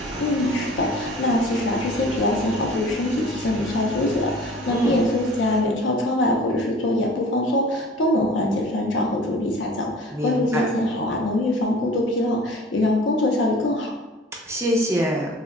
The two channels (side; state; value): both; normal; correlation 0.45